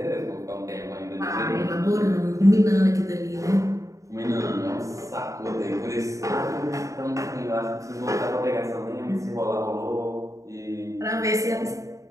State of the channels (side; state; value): left; late; 0.16 ms